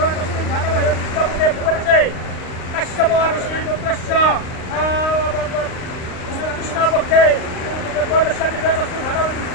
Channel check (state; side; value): late; right; 38 ms